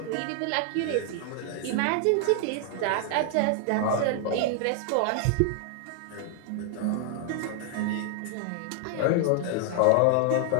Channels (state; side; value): different; both; correlation 0.00